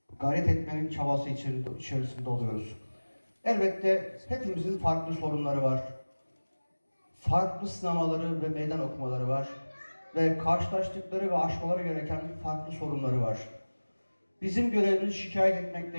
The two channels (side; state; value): both; inverted; correlation -1.00